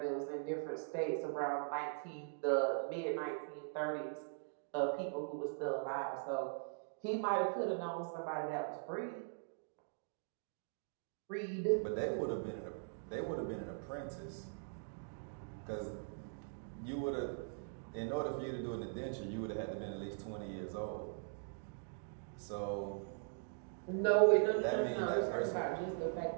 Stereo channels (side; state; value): left; silent; digital silence